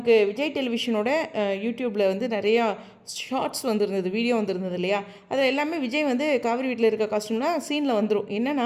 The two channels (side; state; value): both; identical; correlation 1.00